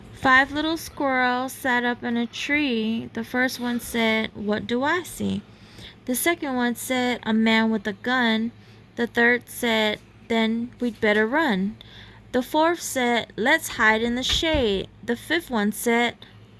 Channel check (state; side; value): identical; both; correlation 1.00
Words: 5 little squirrels sat up in a tree. The first one said, "What do I see?" The second one said, "A man with a gun." The third said, "Then we'd better run." The fourth said, "Let's hide in the shade." The fifth one said,